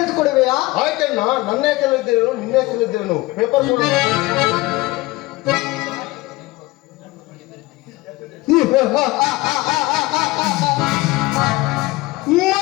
ಆಯ್ತಣ್ಣ, ನನ್ನ ಹೆಸರಲ್ಲಿದ್ದೇನು ನಿನ್ನ ಹೆಸರಲ್ಲಿದ್ದೇನು ಪೇಪರ್ ಕೊಡು.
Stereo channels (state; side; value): quieter; right; 20.1 dB